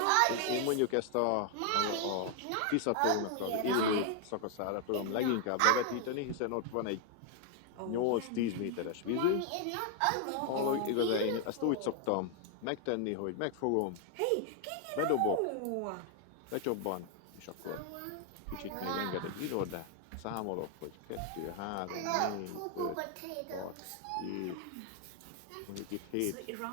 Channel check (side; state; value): both; different; correlation 0.00